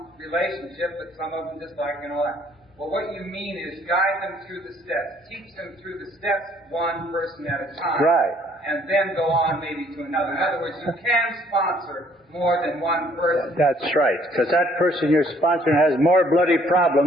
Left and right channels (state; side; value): normal; both; correlation 0.62